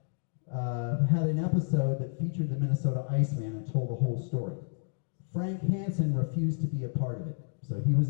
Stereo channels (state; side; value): silent; right; digital silence